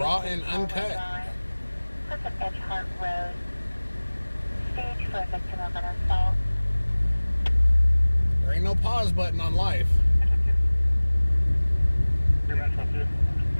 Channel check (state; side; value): inverted; both; correlation -1.00